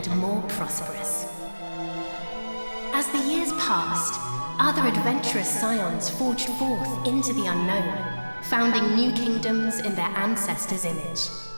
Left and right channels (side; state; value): both; inverted; correlation -1.00